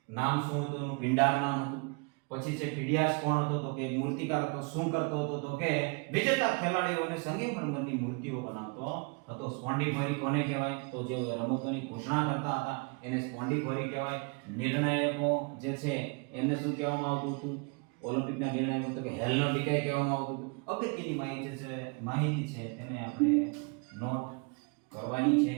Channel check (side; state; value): left; quieter; 32.9 dB